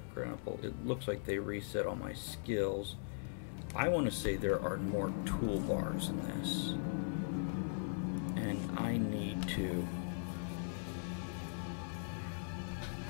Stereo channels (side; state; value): right; silent; digital silence